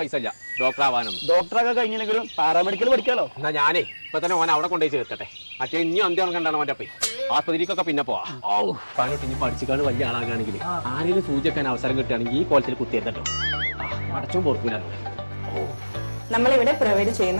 ഇല്ല ഡോക്ടർ ആവാനൊന്നും. ഡോക്ടറൊക്കെ കഴിഞ്ഞില്ലെങ്കിലും പാരാമെഡിക്കൽ പഠിക്കാലോ. എന്നാ ഞാനേ ഇപ്പൊ തന്നെ ഓൻ അവിടെ കൊണ്ടുപോയി ചേർക്കട്ടെ. മറ്റേ ഇനി അന്ത്യം കണ്ടാണ് അവന്റെ അപ്പേ ആസ്പത്രിക്കൊക്കെ പിന്നെ പോവാ. പണിട്ട് ഇനി പഠിച്ചിക്കാണ് വലിയ ആളാകാണെങ്കിൽ ആരെങ്കിലും സൂചിക്കാൻ അവസരം കിട്ടുകയാണെങ്കിൽ ഈ കോളേജിൽ കുത്തിയെത്തട്ടോ. അടച്ചും പൊറക്കൂല. നമ്മളിവിടെ പ്രൊവൈഡ്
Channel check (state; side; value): inverted; both; correlation -1.00